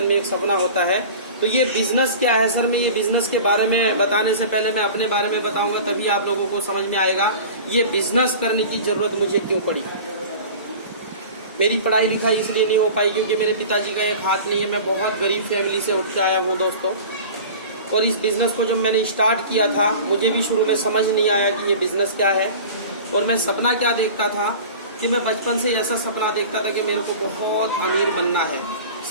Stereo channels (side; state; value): both; inverted; correlation -0.38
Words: में एक सपना होता है। तो ये बिजनेस क्या है सर, मैं ये बिजनेस के बारे में बताने से पहले मैं अपने बारे में बताऊंगा, तभी आप लोगों को समझ में आएगा ये बिजनेस करने की जरूरत मुझे क्यों पड़ी। मेरी पढ़ाई लिखाई इसलिए नहीं हो पाई क्योंकि मेरे पिताजी का एक हाथ नहीं है। मैं बहुत गरीब फैमिली से उठ के आया हूँ दोस्तों। और इस बिजनेस को जब मैंने स्टार्ट किया था, मुझे भी शुरू में समझ नहीं आया कि ये बिजनेस क्या है। और मैं सपना क्या देखता था कि मैं बचपन से ऐसा सपना देखता था कि मेरे को बहुत अमीर बनना है,